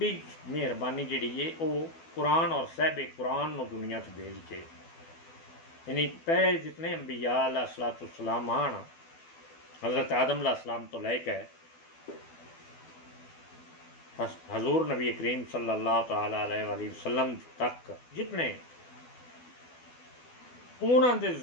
मेहरबानी जिहड़ी है वो कुरान और साहिब कुरान नूं दुनिया च भेज के, यानी पहले जितने अंबिया अलैहिस्सलाम आन, हज़रत आदम अलैहिस्सलाम तो लैके हज़ूर नबी करीम सल्लल्लाहु तआला अलैहि वसल्लम तक जितने उन्होंने दे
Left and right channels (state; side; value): late; right; 12 ms